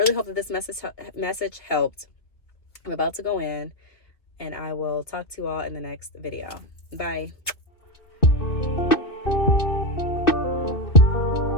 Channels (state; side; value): late; right; 2.4 ms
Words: hope that this message helped. I'm about to go in, and I will talk to you all in the next video. Bye.